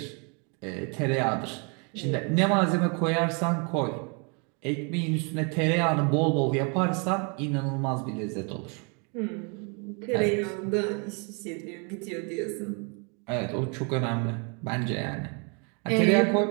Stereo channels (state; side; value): quieter; left; 35.4 dB